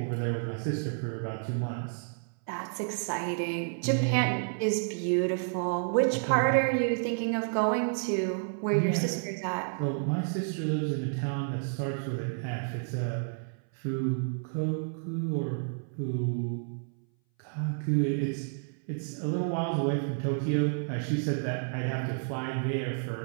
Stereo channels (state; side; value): silent; left; 57 dB below the other